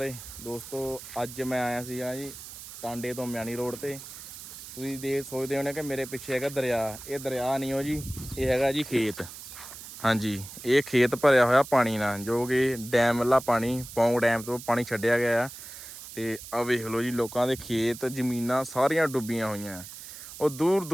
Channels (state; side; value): noise; right; hiss, 13 dB below the sound